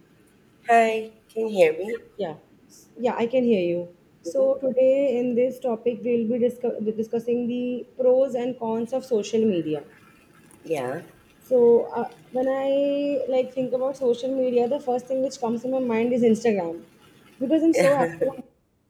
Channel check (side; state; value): both; identical; correlation 1.00